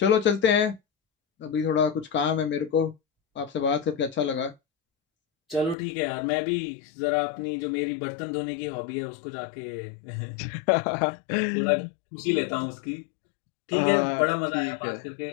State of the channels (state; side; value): drops out; right; at 5.8 s